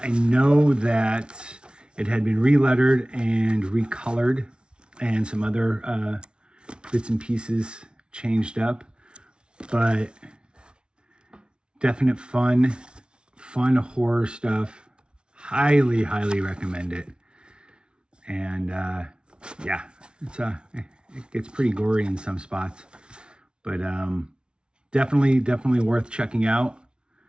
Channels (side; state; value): left; late; 0.056 ms